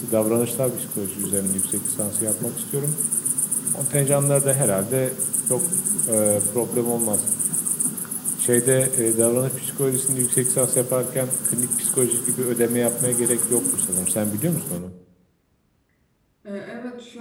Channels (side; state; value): both; identical; correlation 1.00